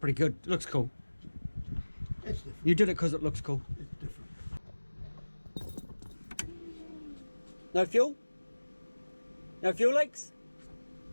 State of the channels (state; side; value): inverted; both; correlation -1.00